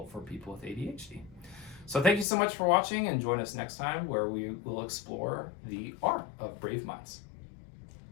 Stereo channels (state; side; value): drops out; right; at 2.2 s